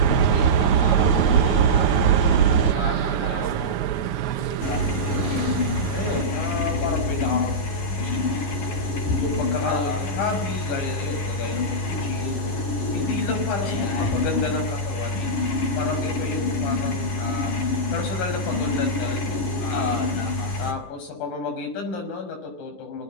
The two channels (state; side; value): late; right; 11 ms